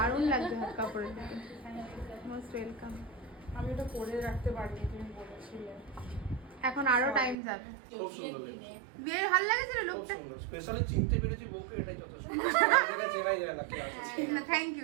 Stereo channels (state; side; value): drops out; left; at 7.4 s